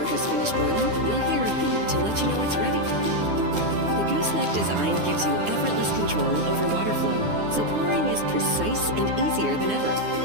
has finished boiling, you'll hear a beep to let you know it's ready. The Gooseneck design gives you effortless control over water flow, so pouring is precise and easier than ever.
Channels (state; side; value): late; left; 9.7 ms